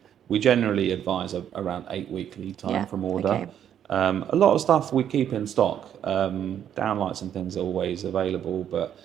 we generally advise around 8-week lead time from order. Okay. A lot of stuff we keep in stock. Downlights and things are always available, but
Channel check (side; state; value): left; quieter; 9.6 dB